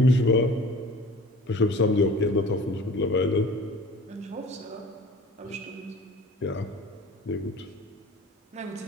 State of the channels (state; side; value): normal; both; correlation 0.44